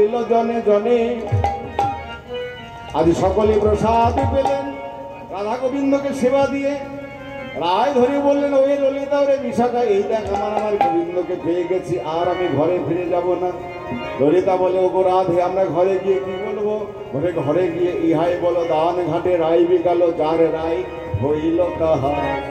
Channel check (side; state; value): both; identical; correlation 1.00